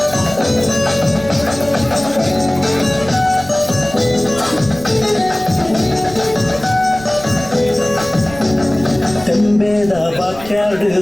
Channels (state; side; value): noise; right; rumble, 17 dB below the sound